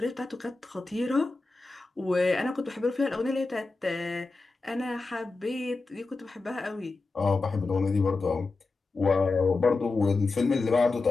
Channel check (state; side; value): quieter; right; 3.7 dB